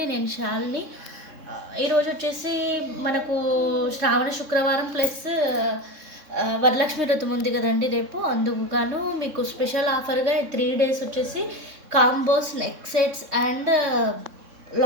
నేను శాలిని. ఈరోజు వచ్చేసి మనకు శ్రావణ శుక్రవారం ప్లస్ వరలక్ష్మి వ్రతం ఉంది కదండి రేపు. అందుకు గాను మీకు స్పెషల్ ఆఫర్గా 3 days వచ్చేసి combos, neck sets and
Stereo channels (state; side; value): late; left; 3.6 ms